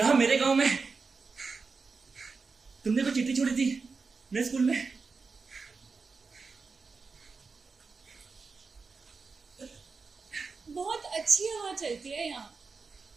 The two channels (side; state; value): left; quieter; 4.6 dB